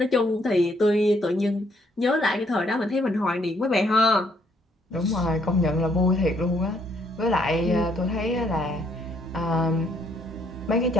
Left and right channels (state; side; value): normal; both; correlation 0.69